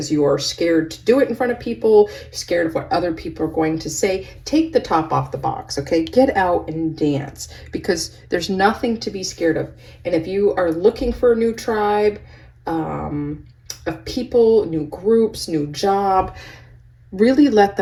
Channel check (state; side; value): identical; both; correlation 1.00